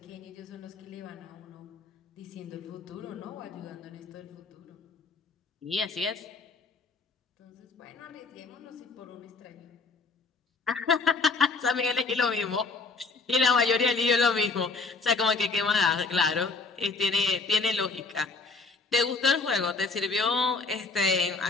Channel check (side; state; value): right; quieter; 4.1 dB